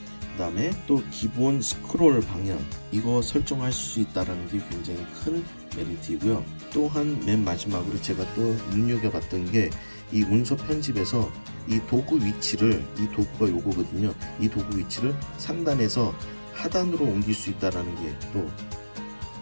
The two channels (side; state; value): both; inverted; correlation -1.00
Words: 다음에 또 기본 스크롤 방향 이거 설정할 수 있다는 게 굉장히 큰 메리트이고요. 또한 맨 마지막으로 제가 또 눈여겨봤던 게 이 문서 편집에서 이 도구 위치를 이 도구가 요거거든요. 이 도구 위치를 상단에서 하단으로 옮길 수 있다는 게 또